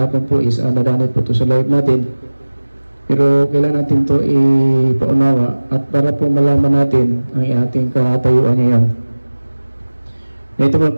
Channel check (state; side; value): inverted; both; correlation -1.00